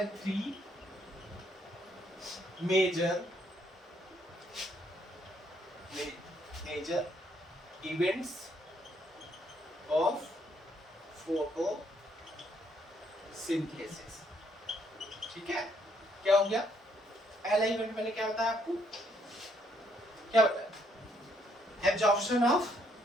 3 मेजर इवेंट्स ऑफ फोटोसिंथेसिस। ठीक है, क्या हो गया? पहला इवेंट मैंने क्या बताया आपको? क्या बताया? Absorption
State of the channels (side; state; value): both; normal; correlation 0.70